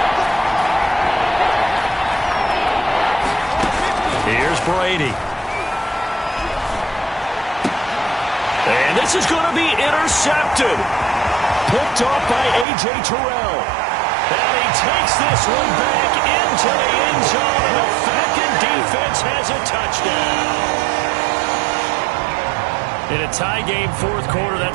Here's Brady. And this is going to be intercepted. Picked off by A.J. Terrell. And he takes this one back into the end zone, and the Falcon defense has a touchdown. In a tie game fourth quarter,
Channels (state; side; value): drops out; left; at 12.7 s